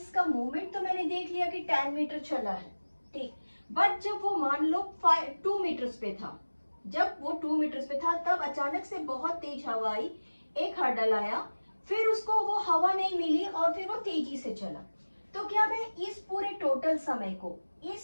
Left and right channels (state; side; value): inverted; both; correlation -1.00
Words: मूवमेंट तो मैंने देख लिया कि 10 मीटर चला है। ठीक, बट जब वो मान लो 2 मीटर्स पे था, जब वो 2 मीटर्स पे था, तब अचानक से बहुत तेज हवा आई, एक हर्डल आया, फिर उसको वो हवा नहीं मिली और फिर वो तेजी से चला। तो क्या मैं इस पूरे टोटल समय को,